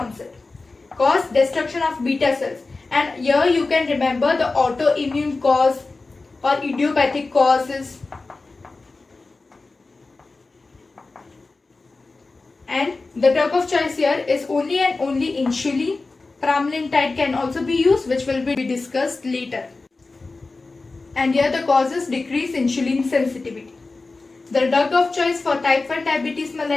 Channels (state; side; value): quieter; right; 3.6 dB